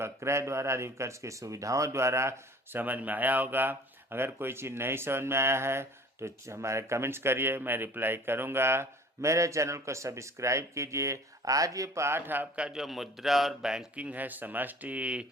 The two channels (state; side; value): normal; both; correlation 0.47